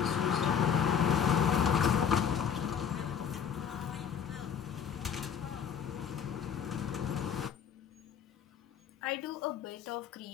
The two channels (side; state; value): right; quieter; 7.9 dB